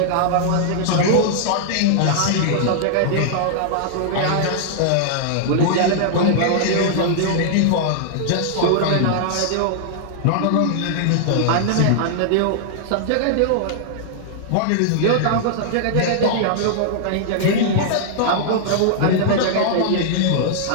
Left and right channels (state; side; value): different; both; correlation -0.01